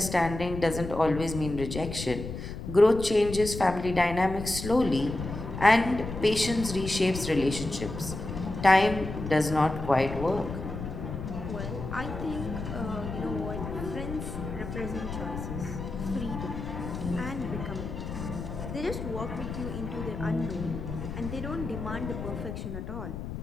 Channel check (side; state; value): left; noise; rumble, 7 dB below the sound